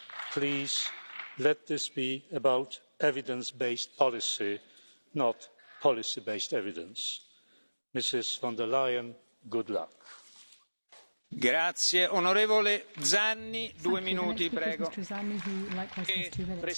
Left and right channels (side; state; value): both; inverted; correlation -1.00